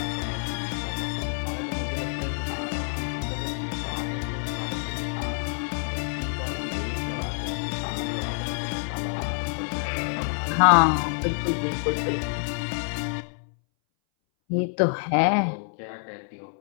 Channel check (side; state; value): right; silent; 60 dB below the other